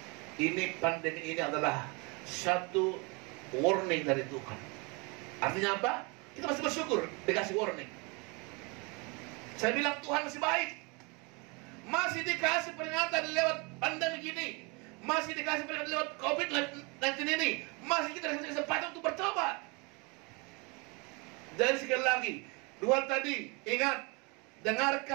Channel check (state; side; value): quieter; left; 29.8 dB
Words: Ini pandemi ini adalah satu warning dari Tuhan. Artinya apa? Kita masih bersyukur dikasih warning. Saya bilang Tuhan masih baik. Masih dikasih peringatan lewat pandemi gini. Masih dikasih peringatan lewat COVID-19 ini. Masih kita dikasih kesempatan untuk bertobat. Jadi sekali lagi, dua tadi, ingat,